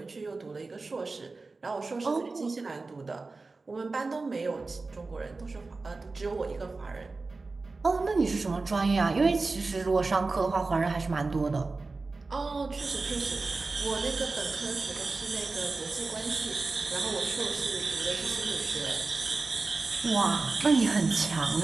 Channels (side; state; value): left; quieter; 3.7 dB